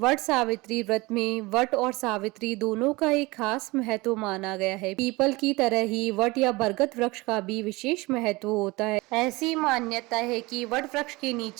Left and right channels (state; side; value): quieter; left; 22.8 dB